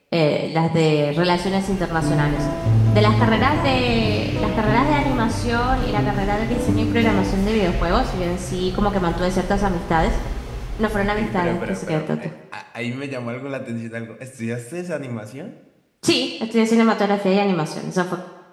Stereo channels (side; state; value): both; identical; correlation 1.00